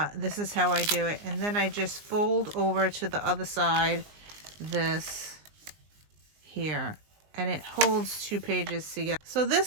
this is how I do it. And then I just fold over to the other side, this here. And it holds 2 pages together. So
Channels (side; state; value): left; late; 19 ms